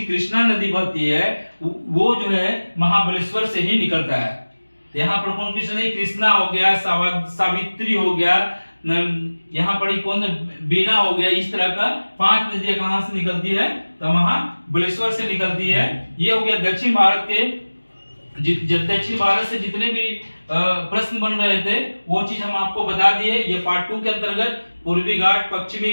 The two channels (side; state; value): both; inverted; correlation -1.00